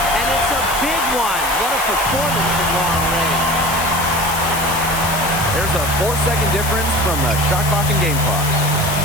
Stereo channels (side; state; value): left; noise; hiss, 6 dB below the sound